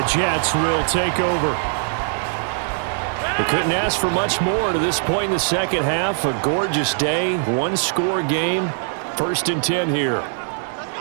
Jets will take over. We couldn't ask for much more to this point in the second half. A gorgeous day, one-score game. 1st and 10 here.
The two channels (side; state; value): left; silent; digital silence